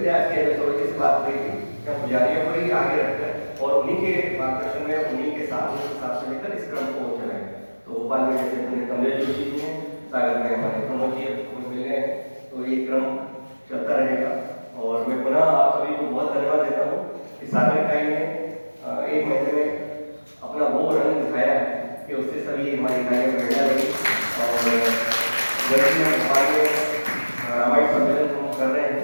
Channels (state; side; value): inverted; both; correlation -1.00